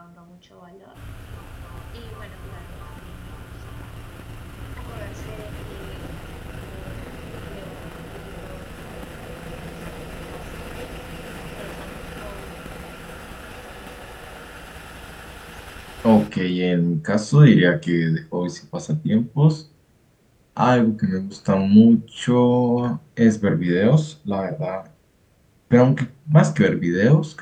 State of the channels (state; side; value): identical; both; correlation 1.00